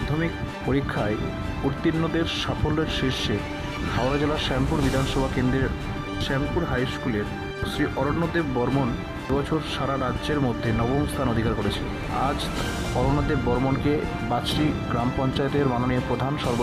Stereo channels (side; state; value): both; identical; correlation 1.00